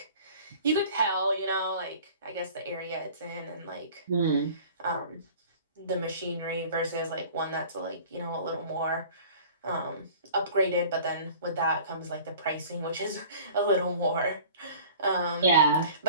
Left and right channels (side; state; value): both; inverted; correlation -0.45